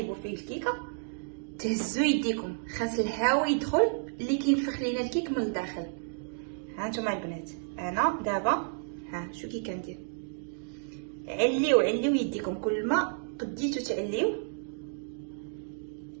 فيه الكيكه تهزوا يديكم، خاص الهواء يدخل اللي كينفخ لينا الكيك من الداخل. ها نتوما البنات، انا دابا ها شو كي كندير، عليو يديكم. كل ما قديتو تعليو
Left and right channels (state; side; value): silent; left; digital silence